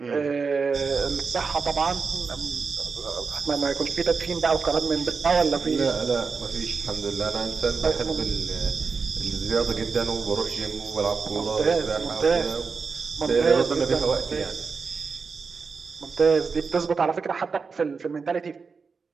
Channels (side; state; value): left; quieter; 5.0 dB